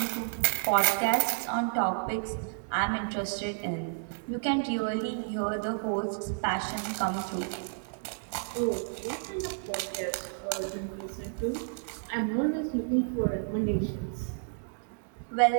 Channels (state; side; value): silent; left; digital silence